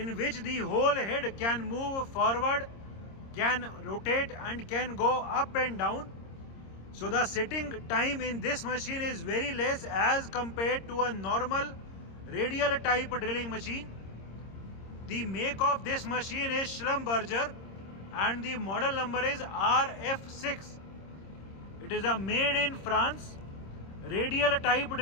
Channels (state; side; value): late; right; 26 ms